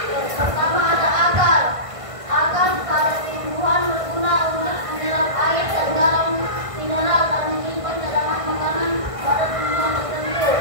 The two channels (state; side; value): late; left; 1.5 ms